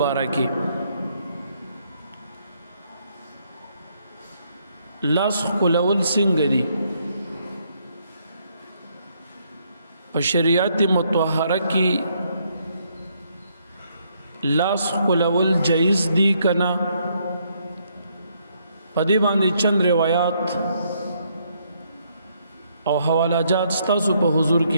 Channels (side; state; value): both; inverted; correlation -0.72